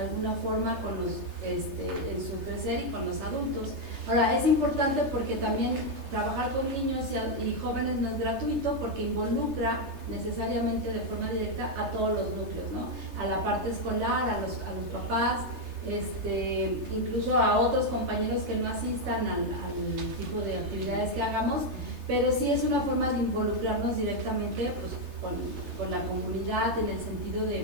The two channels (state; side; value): late; left; 3.3 ms